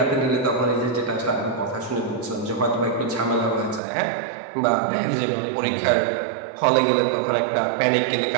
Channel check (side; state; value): left; drops out; at 3.8 s